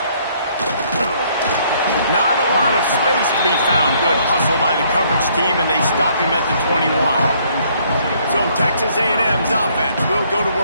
Not a lot of space to be found. Good hustle by the coverage team, and they stop him at the 21. So Texas A&M's offense will go to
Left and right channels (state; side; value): inverted; both; correlation -0.65